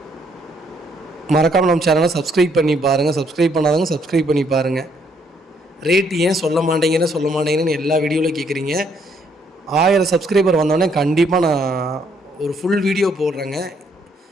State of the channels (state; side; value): normal; both; correlation 0.69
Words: மறக்காமல் நம்ம சேனலை சப்ஸ்கிரைப் பண்ணி பாருங்கள். சப்ஸ்கிரைப் பண்ணாதவங்க சப்ஸ்கிரைப் பண்ணி பாருங்கள். ரேட் ஏன் சொல்ல மாட்டேங்கன்னு எல்லா வீடியோவிலும் கேட்குறீங்க. 1000 சப்ஸ்கிரைபர் வந்தோடனே கண்டிப்பாக நான் ஒரு ஃபுல் வீடியோ போடுறேங்க.